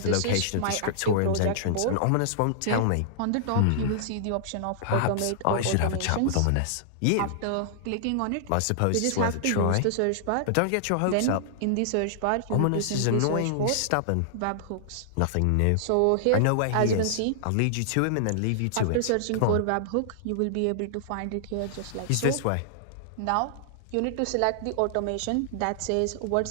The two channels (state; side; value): different; both; correlation -0.01